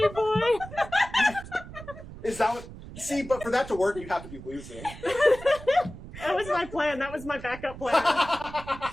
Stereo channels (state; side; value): noise; right; rumble, 14 dB below the sound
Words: boy. is that what? See, but for that to work, you have to be losing. That was my plan. That was my backup plan.